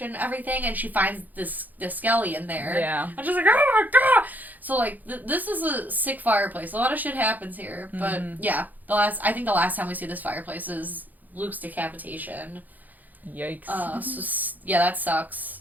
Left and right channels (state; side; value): late; left; 0.083 ms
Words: and everything, and she finds the skelly in there. Yeah. And she's like, oh my God! So, like, this is a sick fireplace. A lot of shit happens here. But, yeah, I think the last time we see this fireplace is Luke's decapitation. Yikes. So, yeah, that sucks.